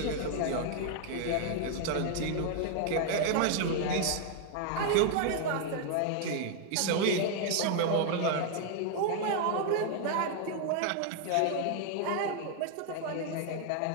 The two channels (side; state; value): both; different; correlation 0.00